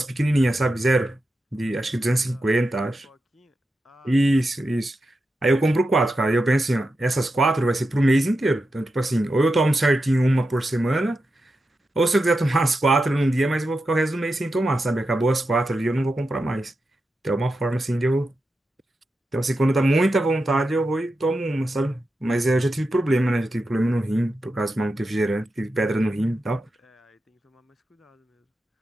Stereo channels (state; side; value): normal; both; correlation 0.89